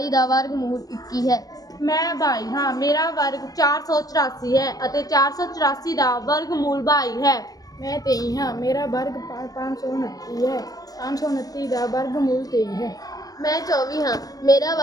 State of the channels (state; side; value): late; right; 0.18 ms